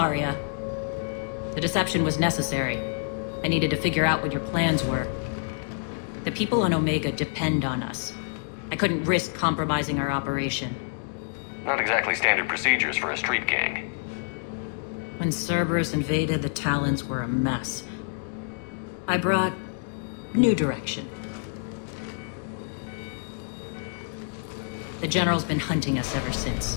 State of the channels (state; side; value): silent; right; digital silence